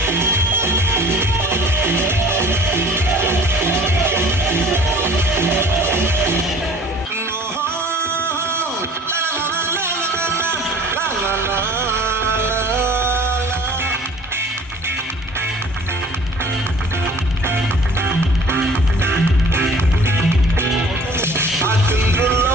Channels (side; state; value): both; normal; correlation 0.49